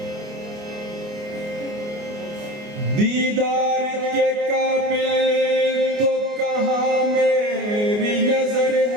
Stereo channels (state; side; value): late; left; 29 ms